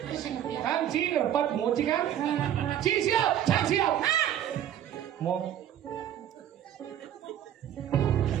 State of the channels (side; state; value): left; quieter; 10.7 dB